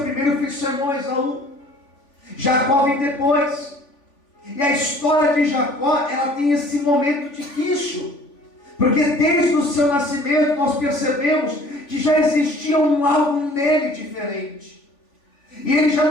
primeiro foi seu irmão Esaú. Jacó vem depois. E a história de Jacó, ela tem esse momento difícil. Porque desde o seu nascimento nós percebemos que já existia algo nele diferente. E ele já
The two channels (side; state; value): right; late; 3.5 ms